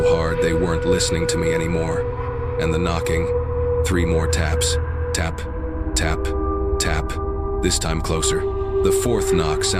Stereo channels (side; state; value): both; identical; correlation 1.00